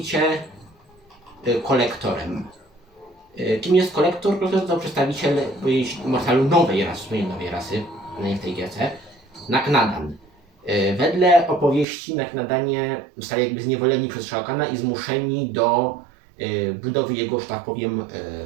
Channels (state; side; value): drops out; left; at 11.9 s